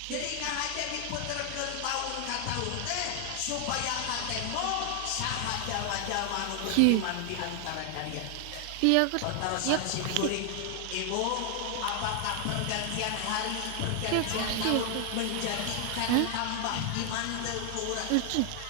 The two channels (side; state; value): both; different; correlation 0.00